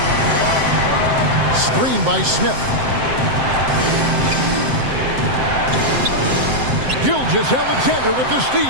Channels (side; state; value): left; late; 7.7 ms